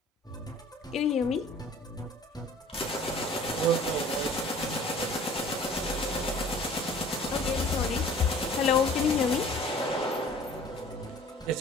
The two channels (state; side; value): normal; both; correlation 0.48